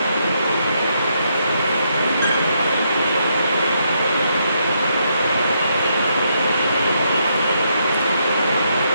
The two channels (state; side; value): inverted; both; correlation -0.77